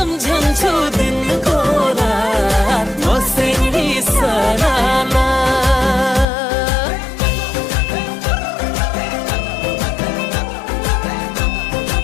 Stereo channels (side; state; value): right; drops out; at 6.2 s